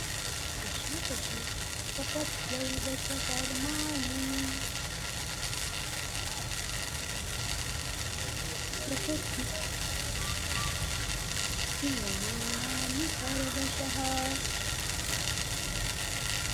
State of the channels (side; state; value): both; identical; correlation 1.00